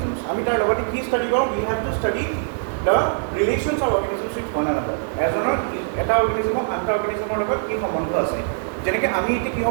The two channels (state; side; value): silent; left; digital silence